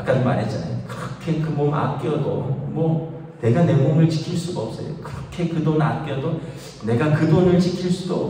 말했잖아요. 그렇게 그 몸 아껴도 뭐 내가 내 몸을 지킬 수가 없어요. 그렇게 그 돈 아껴도 내가 그 돈을 지킬 수도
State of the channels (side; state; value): both; identical; correlation 1.00